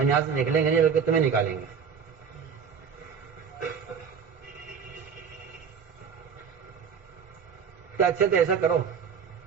یہاں سے نکلیں گے نہیں بلکہ تمہیں نکالیں گے۔ تو اچھا تو ایسا کرو،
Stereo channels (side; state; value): left; quieter; 6.8 dB